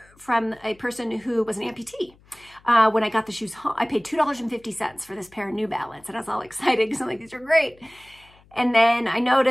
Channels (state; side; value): noise; left; hum, 29 dB below the sound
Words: from a person who was an amputee. When I got the shoes home, I paid $2.50 for this pair of New Balance, and I was all excited because I'm like, these are great. And then I